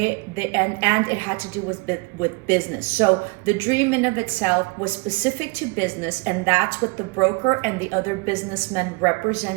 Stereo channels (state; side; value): quieter; left; 28.5 dB